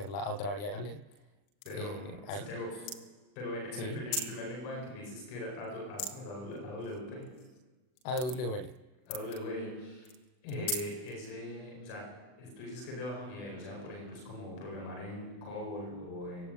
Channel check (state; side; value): late; right; 40 ms